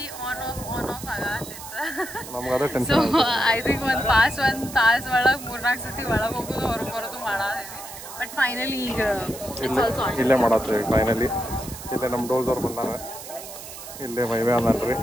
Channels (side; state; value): right; noise; hiss, 13 dB below the sound